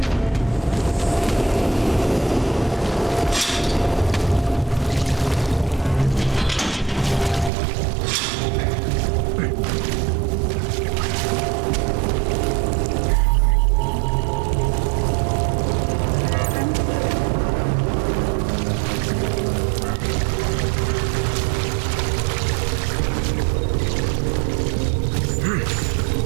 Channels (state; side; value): drops out; left; at 7.5 s